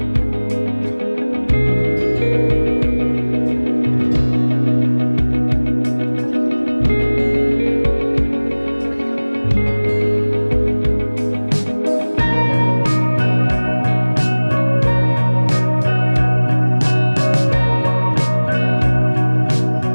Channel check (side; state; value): both; inverted; correlation -1.00